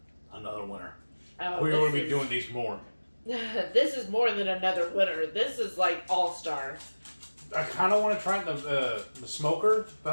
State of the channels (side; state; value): both; inverted; correlation -1.00